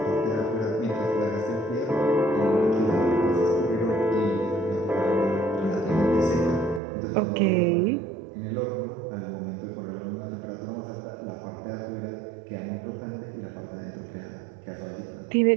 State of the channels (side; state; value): left; drops out; at 6.8 s